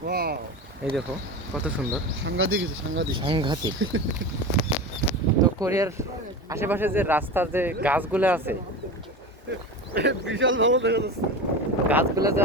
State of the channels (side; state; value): both; normal; correlation 0.27